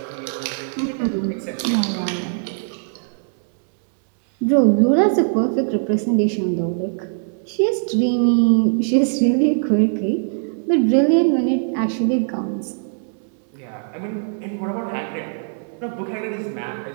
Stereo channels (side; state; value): left; silent; digital silence